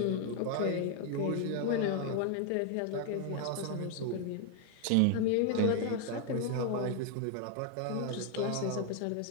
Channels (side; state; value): both; different; correlation 0.00